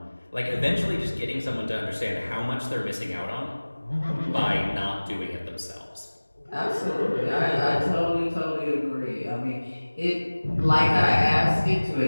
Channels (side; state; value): both; inverted; correlation -1.00